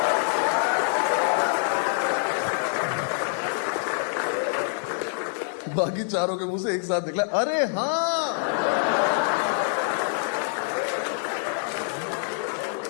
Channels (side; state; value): right; silent; digital silence